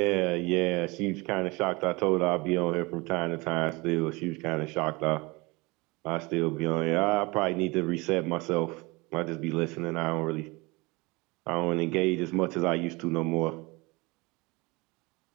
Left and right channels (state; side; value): quieter; left; 25.0 dB